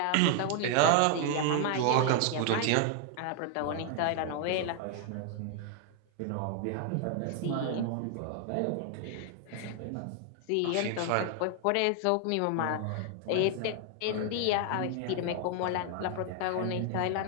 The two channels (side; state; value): both; different; correlation 0.00